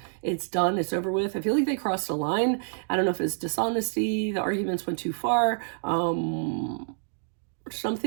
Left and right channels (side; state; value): left; silent; digital silence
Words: done, it's over with. I feel like they crossed a line. I don't know if it's dishonesty, the arguments went too far,